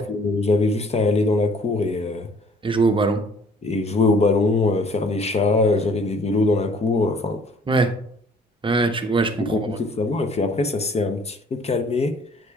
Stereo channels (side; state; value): both; normal; correlation 0.57